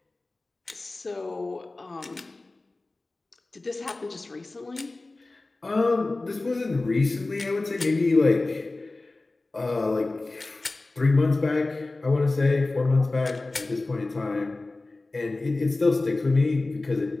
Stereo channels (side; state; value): right; quieter; 3.2 dB